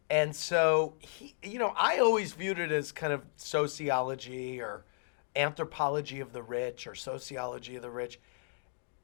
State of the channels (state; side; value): silent; right; digital silence